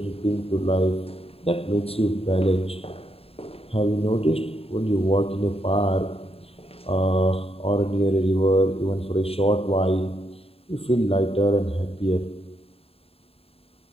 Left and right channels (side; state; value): right; late; 0.28 ms